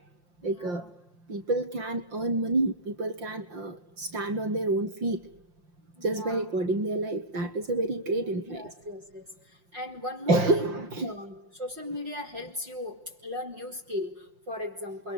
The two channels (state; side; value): late; left; 5.7 ms